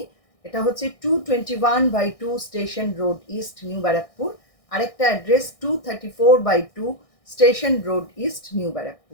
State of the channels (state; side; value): late; right; 1.6 ms